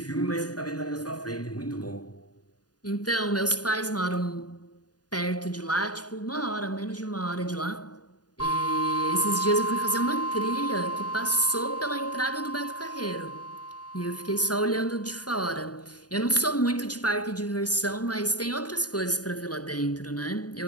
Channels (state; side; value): late; right; 0.69 ms